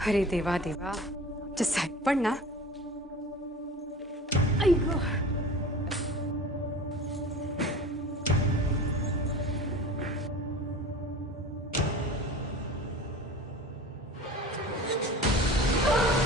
अरे देवा देवा, जे साहेब पण ना, अय्यो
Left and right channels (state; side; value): normal; both; correlation 0.38